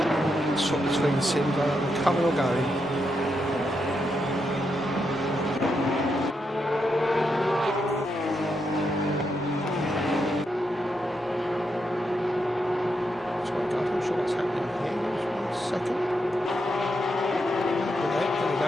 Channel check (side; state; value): both; normal; correlation 0.82